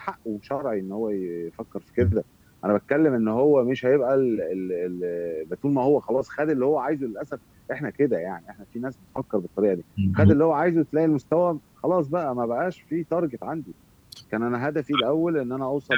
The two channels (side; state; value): both; identical; correlation 1.00